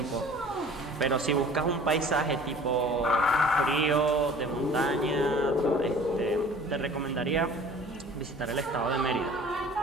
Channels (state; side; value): normal; both; correlation 0.47